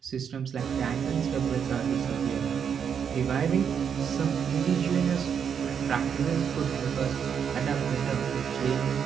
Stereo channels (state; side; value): quieter; left; 7.5 dB